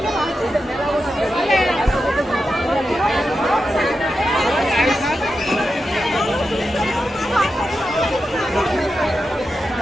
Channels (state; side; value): normal; both; correlation 0.89